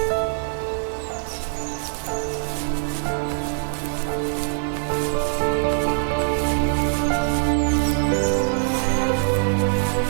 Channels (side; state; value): left; silent; digital silence